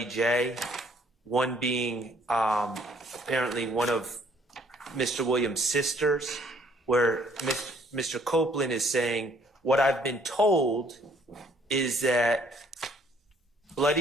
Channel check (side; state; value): both; normal; correlation 0.63